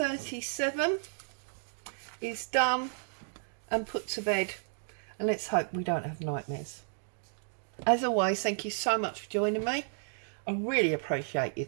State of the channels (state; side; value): silent; left; digital silence